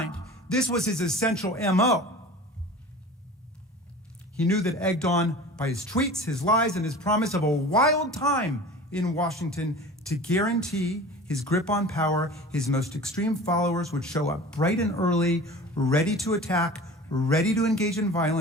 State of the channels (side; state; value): both; normal; correlation 0.39